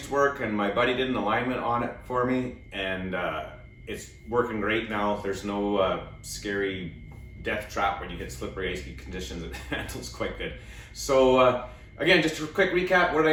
to work and my buddy did an alignment on it for me, and it's working great now. There's no scary death trap when you hit slippery icy conditions. It handles quite good. So again, just a quick recap, what did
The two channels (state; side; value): identical; both; correlation 1.00